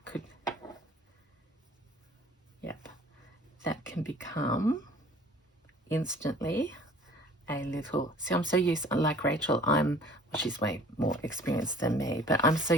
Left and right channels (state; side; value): normal; both; correlation 0.51